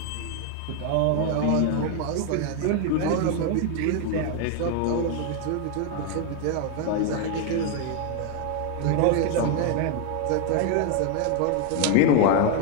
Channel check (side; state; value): both; different; correlation 0.01